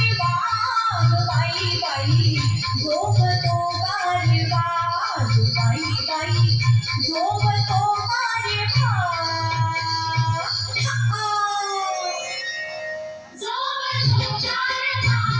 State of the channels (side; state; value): both; identical; correlation 1.00